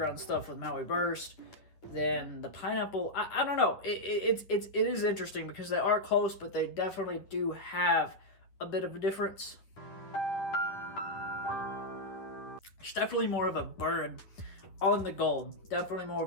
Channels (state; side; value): late; right; 9.9 ms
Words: stuff with Maui Burst, then the pineapple, I don't know. It is interesting because they are close, but they definitely do have a bit of a difference. It's definitely more of a burn on the Gold. Definitely more